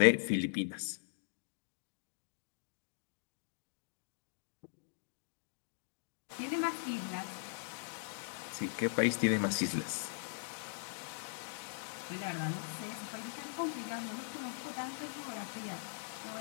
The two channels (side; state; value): right; silent; digital silence